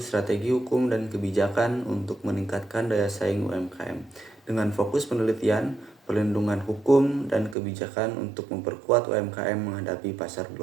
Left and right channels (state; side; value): drops out; left; at 7.6 s